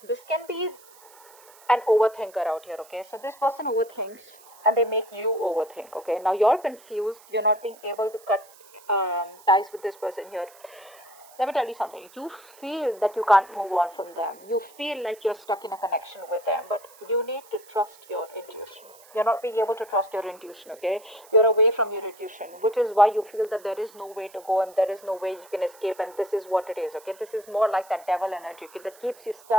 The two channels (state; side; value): noise; right; hiss, 24 dB below the sound